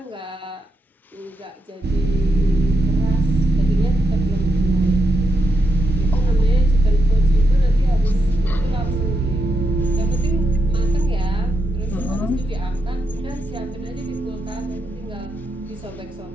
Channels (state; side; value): normal; both; correlation 0.84